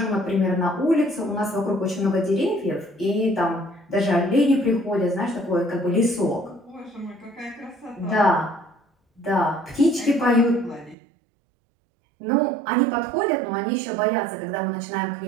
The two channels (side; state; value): left; drops out; at 11.0 s